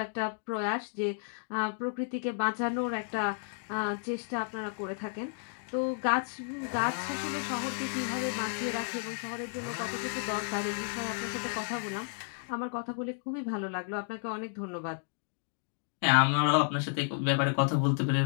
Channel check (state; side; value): silent; right; digital silence